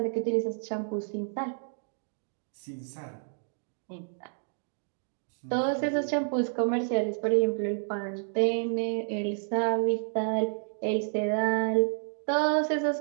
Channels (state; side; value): silent; left; 58 dB below the other